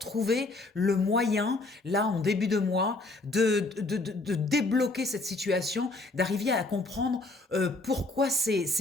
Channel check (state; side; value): quieter; right; 3.1 dB